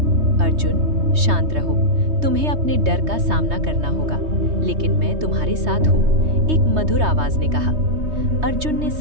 अर्जुन, शांत रहो, तुम्हें अपने डर का सामना करना होगा, लेकिन मैं तुम्हारे साथ हूँ, एक मधुर आवाज ने कहा। अर्जुन ने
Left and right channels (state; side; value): late; left; 3.2 ms